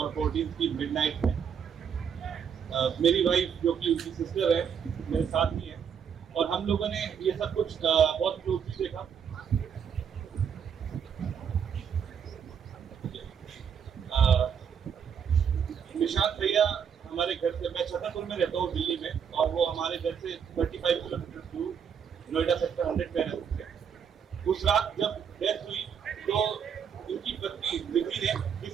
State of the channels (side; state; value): left; quieter; 7.5 dB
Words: 14 की मिडनाइट में। मेरी वाइफ जो कि उनकी सिस्टर है मेरे साथ ही है, और हम लोगों ने ये सब कुछ बहुत क्लोजली देखा। निशांत भैया हमारे घर से, मैं छतरपुर में रहता हूँ दिल्ली में, और वो हमारे घर से 35 किलोमीटर दूर नोएडा सेक्टर 100 में रहते थे। उस रात जब डेथ हुई तो उनकी पत्नी विधि ने